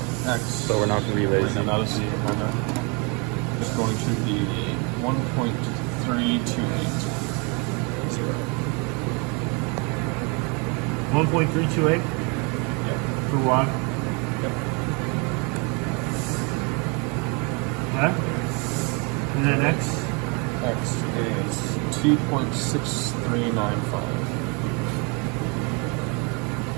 X. So we're not going to be lazy. Right now, that is the amount is going to be 1.328. 1.328 Yep. for Y. Yep. Okay. And then X. X is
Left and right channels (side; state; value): left; quieter; 32.3 dB